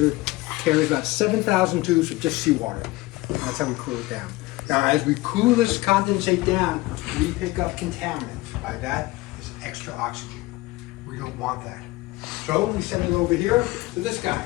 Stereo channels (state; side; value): quieter; right; 20.3 dB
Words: carries about 7,000 tubes of just seawater. That's how we cool it down. Now, as we cool this condensate down, we pick up contaminants. By that is extra oxygen. We don't want that. So we send it over here to this guy.